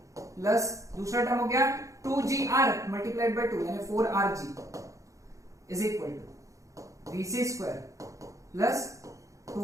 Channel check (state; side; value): late; left; 0.15 ms